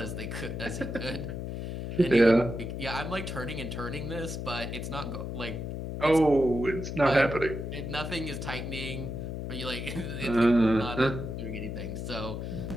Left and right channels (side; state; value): left; noise; hum, 5 dB below the sound